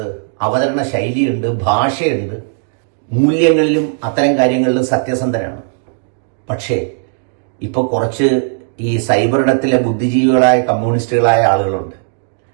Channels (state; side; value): silent; left; digital silence